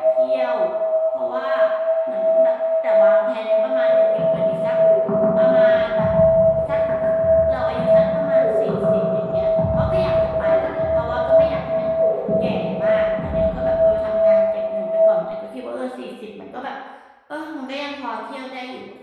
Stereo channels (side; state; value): both; identical; correlation 1.00